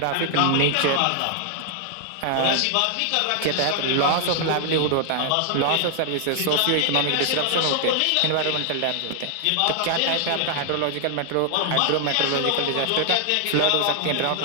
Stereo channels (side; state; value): both; different; correlation 0.00